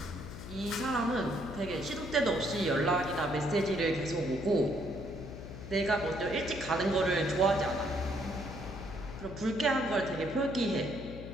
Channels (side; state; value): left; noise; hum, 11 dB below the sound